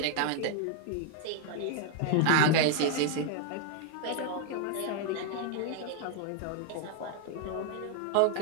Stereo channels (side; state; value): both; different; correlation 0.00